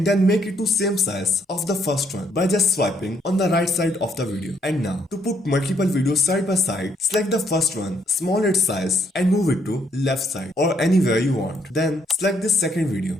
then make it to same size of the first one by just swiping on the right side of the video. And now to put multiple videos side by side, select the first one, small its size, and move it to left side or anywhere you want. Then select this second video,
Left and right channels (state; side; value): normal; both; correlation 0.71